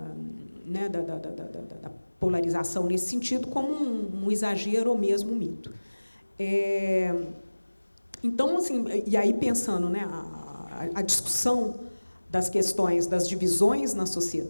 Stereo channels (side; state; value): both; inverted; correlation -1.00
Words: né, da polarização nesse sentido, como um exagero ou mesmo um mito. Então, assim, e aí pensando, né, a discussão das questões das divisões nas